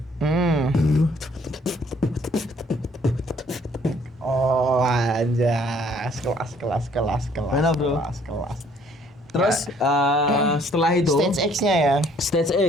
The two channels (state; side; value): normal; both; correlation 0.61